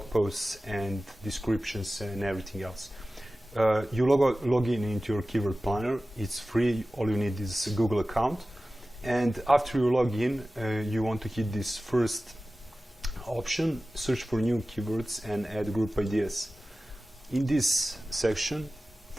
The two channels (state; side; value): normal; both; correlation 0.96